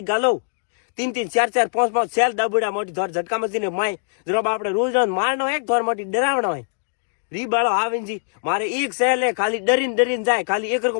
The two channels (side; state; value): right; silent; digital silence